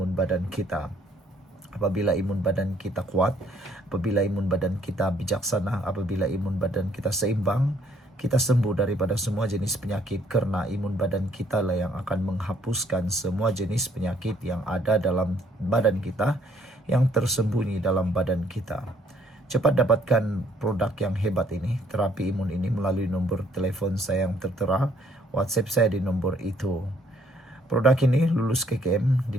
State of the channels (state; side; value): normal; both; correlation 0.65